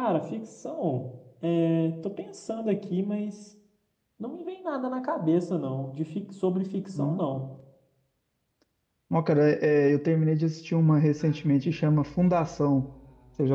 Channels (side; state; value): both; identical; correlation 1.00